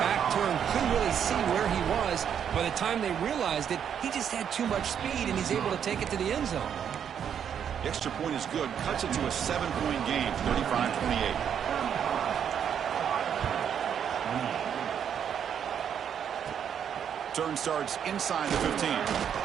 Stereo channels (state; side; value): quieter; left; 8.4 dB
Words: turned, couldn't really see where he was. By the time they realized it, he just had too much speed, and he's able to take it to the end zone. The extra point is good. Cuts it to a 7-point game, 35-28. Turn starts inside the 15.